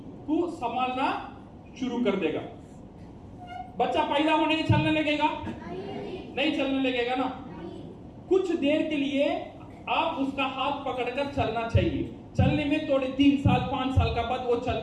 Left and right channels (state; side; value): identical; both; correlation 1.00